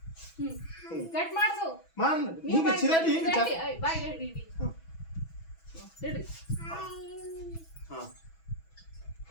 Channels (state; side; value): late; right; 6.1 ms